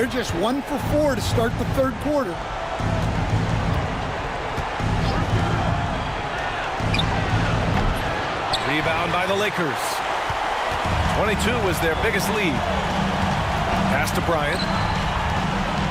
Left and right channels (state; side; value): identical; both; correlation 1.00